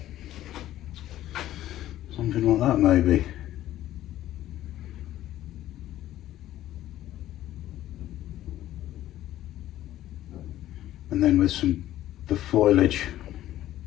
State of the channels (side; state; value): right; quieter; 13.6 dB